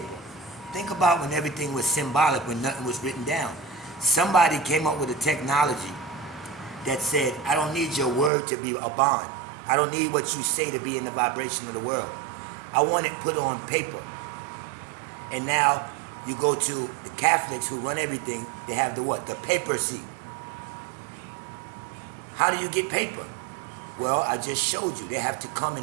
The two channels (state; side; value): drops out; left; at 8.3 s